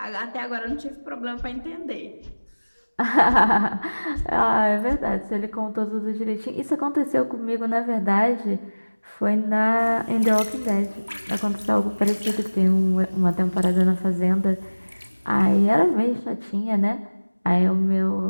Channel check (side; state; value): both; inverted; correlation -1.00